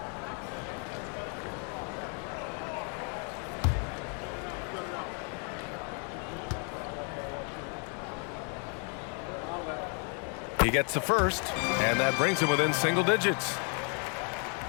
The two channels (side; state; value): right; quieter; 39.7 dB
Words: He gets the first, and that brings him within single digits.